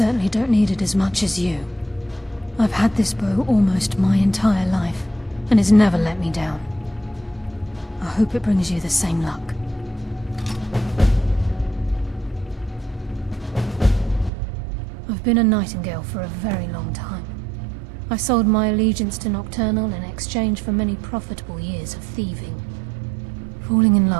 don't need it as much as you. I've had this bow almost my entire life, and it's never let me down. I hope it brings you the same luck. I've been a Nightingale for a very long time. I sold my allegiance to Nocturnal in exchange for many profitable years of thieving. Falling in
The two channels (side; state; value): left; drops out; at 14.3 s